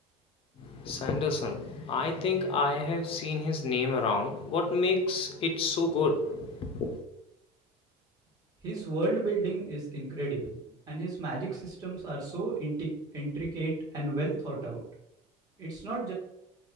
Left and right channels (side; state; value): both; normal; correlation 0.30